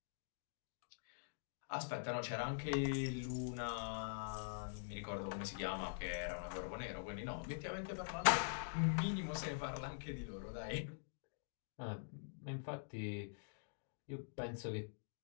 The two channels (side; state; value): right; silent; digital silence